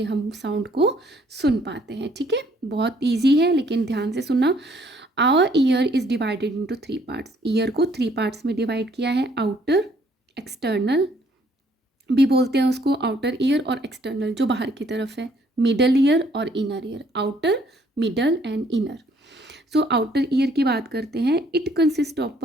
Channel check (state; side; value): normal; both; correlation 0.64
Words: हम साउंड को सुन पाते हैं। ठीक है, बहुत ईजी है, लेकिन ध्यान से सुनना। Our ear is divided into 3 parts. Ear को 3 पार्ट्स में डिवाइड किया है। आउटर, एक्सटर्नल भी बोलते हैं उसको, आउटर ईयर और एक्सटर्नल जो बाहर की तरफ है। मिडल ईयर और inner ear, outer, middle and inner. So outer ear की बात करते हैं। It consist of